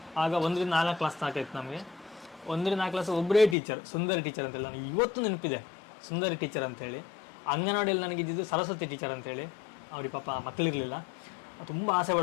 ಆಗ 1ರಿಂದ 4 ಕ್ಲಾಸ್ ಸಾಕಾಯ್ತು ನಮಗೆ. 1ರಿಂದ 4 ಕ್ಲಾಸ್ ಒಬ್ಬರೇ ಟೀಚರ್, ಸುಂದರಿ ಟೀಚರ್ ಅಂತೇಳಿ. ನನಗೆ ಇವತ್ತು ನೆನಪಿದೆ ಸುಂದರಿ ಟೀಚರ್ ಅಂತೇಳಿ. ಅಂಗನವಾಡಿಯಲ್ಲಿ ನನಗೆ ಇದ್ದಿದ್ದು ಸರಸ್ವತಿ ಟೀಚರ್ ಅಂತೇಳಿ. ಅವ್ರಿಗೆ ಪಾಪ ಮಕ್ಕಳಿರಲಿಲ್ಲ, ತುಂಬ ಆಸೆ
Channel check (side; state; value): right; drops out; at 3.6 s